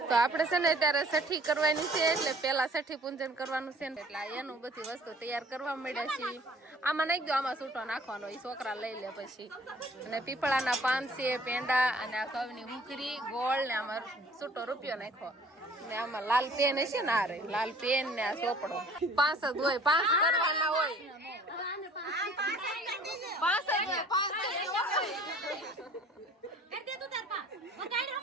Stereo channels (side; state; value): both; normal; correlation 0.53